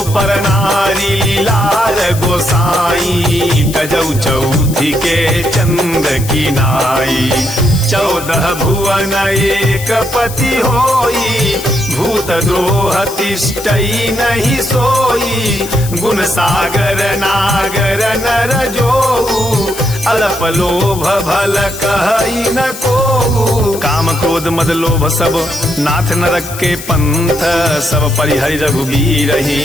पर नारी लीलार गोसाई, तजौ चौथी के चंद की नाई। 14 भुवन एक पति होई, भूत द्रोह तिष्ठई नहीं सोई। गुण सागर नागर नर जोऊ, अल्प लोभ भल कहई न कोऊ। काम क्रोध मद लोभ सब नाथ नरक के पंथ, सब परिहरि रघुबीर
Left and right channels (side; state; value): left; noise; hiss, 12 dB below the sound